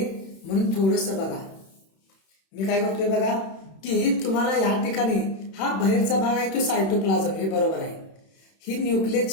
म्हणून थोडस बघा. मी काय करतोय बघा की तुम्हाला या ठिकाणी हा बाहेरचा भाग आहे तो सायटोप्लाझम, हे बरोबर आहे. ही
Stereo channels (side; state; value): right; late; 31 ms